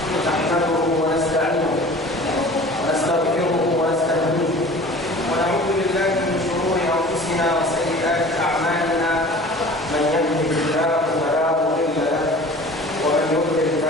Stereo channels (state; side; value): normal; both; correlation 0.43